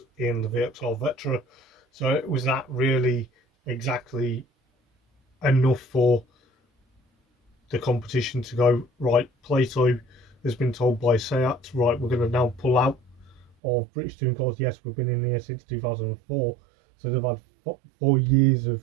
in the VXR Vetra. So it was that really exactly enough for the competition to go, right, Plato has been told by Seat, right, we're going to now pull out of British Touring Cars. Yes, we've been in here since 2004, so they've had 4 years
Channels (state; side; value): drops out; left; at 13.6 s